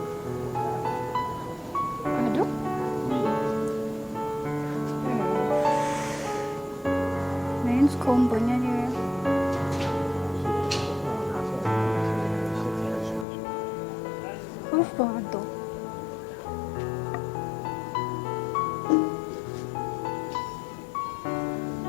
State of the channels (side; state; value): right; drops out; at 13.2 s